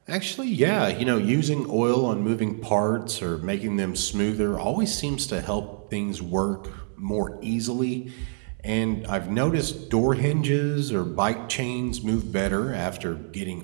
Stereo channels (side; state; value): left; silent; digital silence